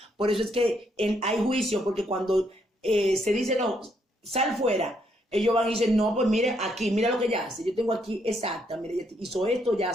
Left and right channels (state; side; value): normal; both; correlation 0.73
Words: Por eso es que hay juicio, porque cuando se dice, no, sal fuera, ellos van y dicen, no, pues mire, aquí, mira lo que ella hace. Yo tengo aquí, exacta, mire, ella hizo esto, ya